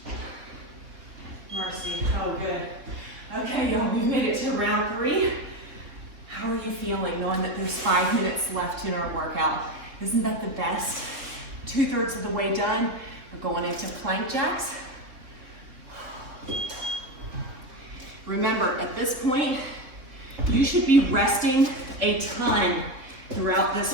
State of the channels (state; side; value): late; left; 3.6 ms